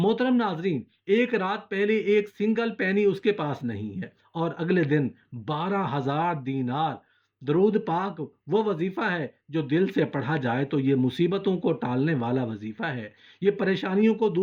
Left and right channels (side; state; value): both; identical; correlation 1.00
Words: ناظرین، ایک رات پہلے ایک سنگل پینی اس کے پاس نہیں ہے، اور اگلے دن 12,000 دینار۔ درود پاک وہ وظیفہ ہے جو دل سے پڑھا جائے تو یہ مصیبتوں کو ٹالنے والا وظیفہ ہے، یہ پریشانیوں کو